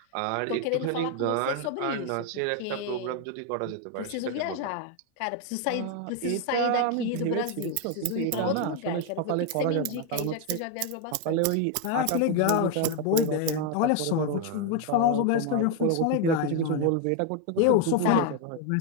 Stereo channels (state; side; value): different; both; correlation 0.01